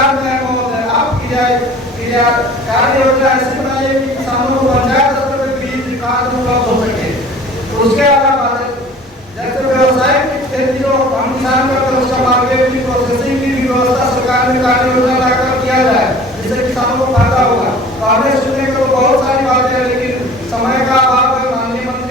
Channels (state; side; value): normal; both; correlation 0.46